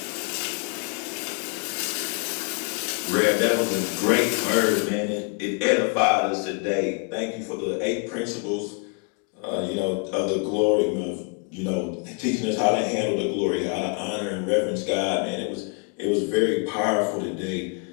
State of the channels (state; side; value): quieter; right; 34.3 dB